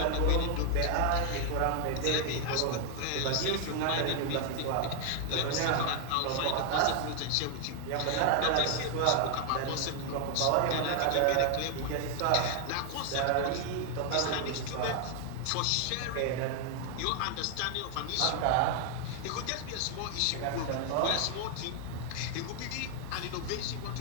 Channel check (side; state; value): both; different; correlation 0.00